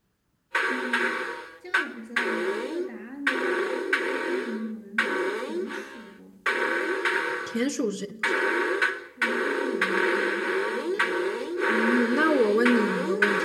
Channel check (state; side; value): identical; both; correlation 1.00